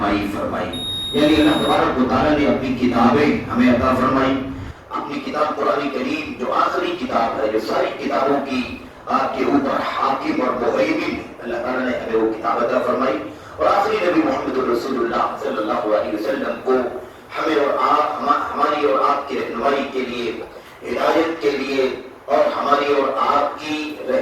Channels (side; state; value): both; identical; correlation 1.00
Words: فرمائی. یعنی اللہ تبارک و تعالیٰ نے اپنی کتابیں ہمیں عطا فرمائی. اپنی کتاب قرآن کریم جو آخری کتاب ہے، جو ساری کتابوں کی آپ کے اوپر حاکم اور مہیمن، اللہ تعالیٰ نے ہمیں وہ کتاب عطا فرمائی. اور آخری نبی محمد رسول اللہ صلی اللہ علیہ وسلم کو ہمیں اور آپ، ہماری اور آپ کی رہنمائی کے لیے، ہدایت کے لیے، اور ہماری اور آپ کی